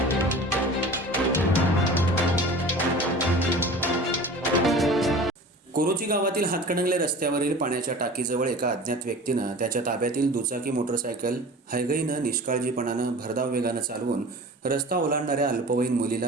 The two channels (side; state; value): both; normal; correlation 0.39